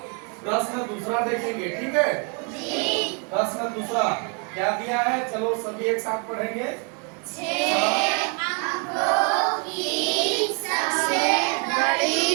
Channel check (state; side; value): quieter; left; 36.7 dB